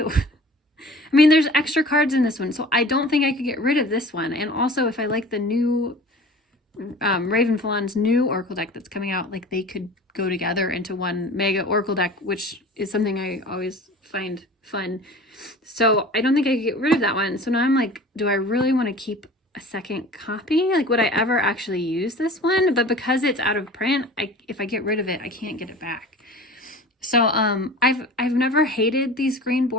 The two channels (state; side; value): normal; both; correlation 0.41